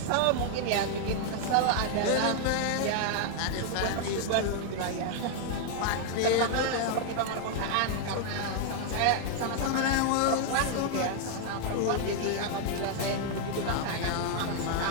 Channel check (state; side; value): different; both; correlation 0.00